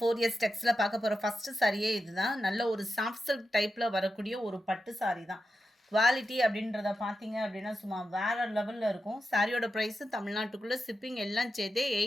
டெக்ஸ்ல பார்க்க போற ஃபர்ஸ்ட் சாரியே இதுதான். நல்ல ஒரு சாஃப்ட் சில்க் டைப்ல வரக்கூடிய ஒரு பட்டு சாரி தான். குவாலிட்டி அப்படின்றத பார்த்தீங்க அப்படின்னா சும்மா வேற லெவல்ல இருக்கும். சாரியோட ப்ரைஸ் தமிழ்நாட்டுக்குள்ள ஷிப்பிங் எல்லாம் சேர்த்தே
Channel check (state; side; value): normal; both; correlation 0.89